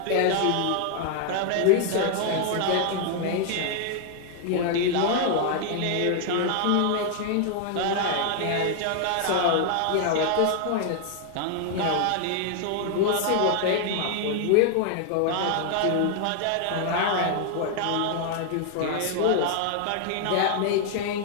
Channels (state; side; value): different; both; correlation 0.00